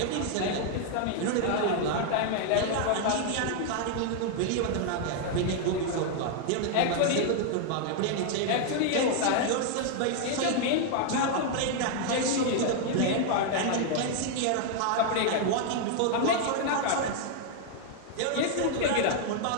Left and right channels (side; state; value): both; different; correlation 0.00